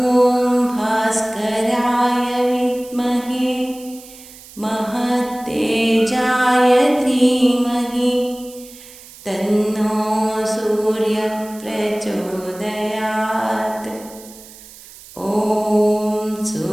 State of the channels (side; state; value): right; noise; hiss, 19 dB below the sound